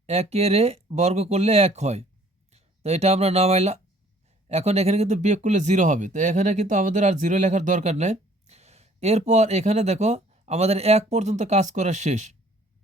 1-এর বর্গ করলে 1 হয়, তো এটা আমরা নামাইলাম। এখন এখানে কিন্তু বিয়োগ করলে 0 হবে, তো এখানে কিন্তু আমাদের আর 0 লেখার দরকার নেই। এরপর এখানে দেখো আমাদের 1 পর্যন্ত কাজ করা শেষ।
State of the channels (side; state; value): both; normal; correlation 0.56